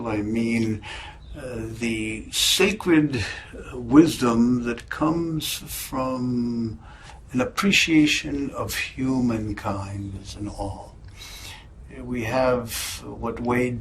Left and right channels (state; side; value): identical; both; correlation 1.00